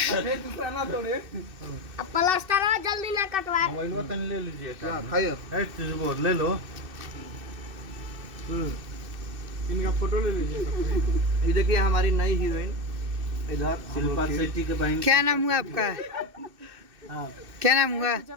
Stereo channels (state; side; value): late; left; 2.6 ms